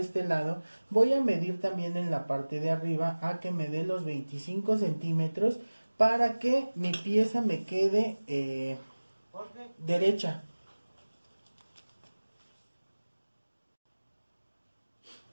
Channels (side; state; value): both; inverted; correlation -1.00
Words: lado voy a medir también en la parte de arriba a que me dé los 25 centímetros para que mi pieza me quede derecha.